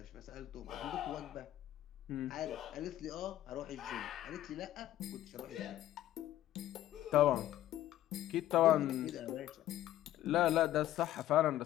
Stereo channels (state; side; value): quieter; right; 13.3 dB